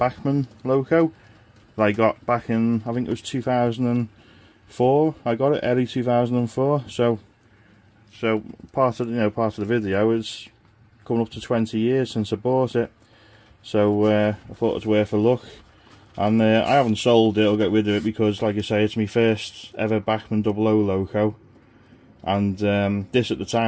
loco that I got back in, I think it was 2004. I got it early 2004. So part of the video is coming up to 20 years since I bought it. So I thought it was worth a look. And I haven't sold it or got rid of it because, like I say, it's my first ever Bachmann 00 loco. And this at the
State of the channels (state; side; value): identical; both; correlation 1.00